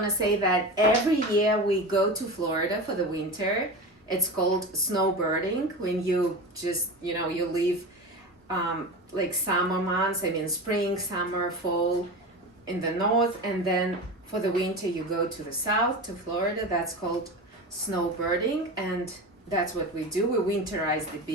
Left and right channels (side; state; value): both; normal; correlation 0.27